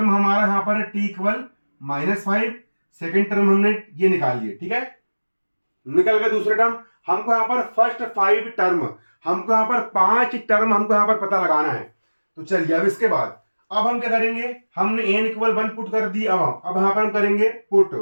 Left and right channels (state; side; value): inverted; both; correlation -1.00